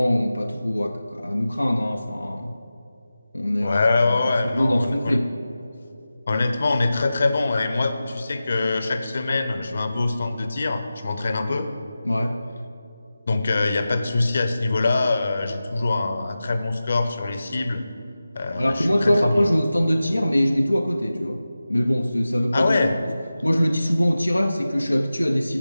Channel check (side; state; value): both; inverted; correlation -0.94